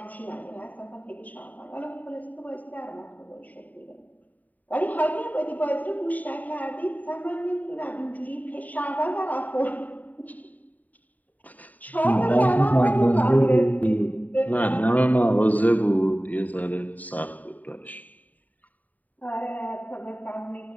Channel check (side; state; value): right; late; 0.076 ms